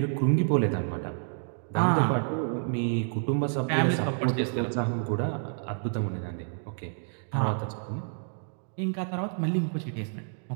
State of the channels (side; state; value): left; silent; digital silence